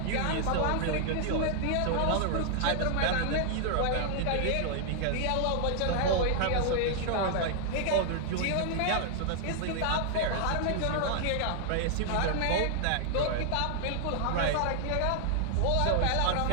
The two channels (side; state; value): both; different; correlation 0.00